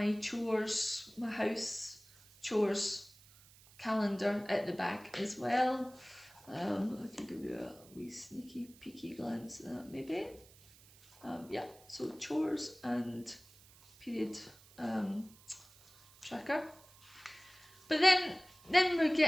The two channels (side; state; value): right; noise; hiss, 24 dB below the sound